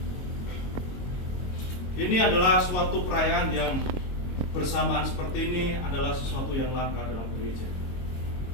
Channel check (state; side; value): late; right; 22 ms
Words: Ini adalah suatu perayaan yang bersamaan seperti ini adalah sesuatu yang langka dalam gereja.